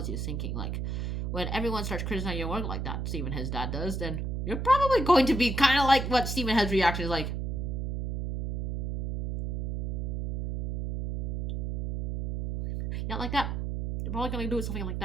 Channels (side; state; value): right; noise; hum, 3 dB below the sound